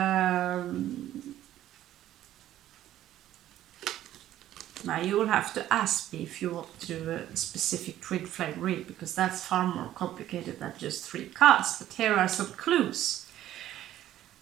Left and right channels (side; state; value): left; quieter; 12.9 dB